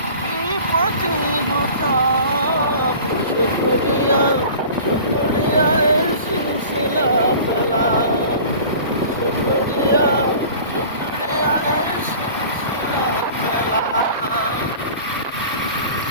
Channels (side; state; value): both; inverted; correlation -0.42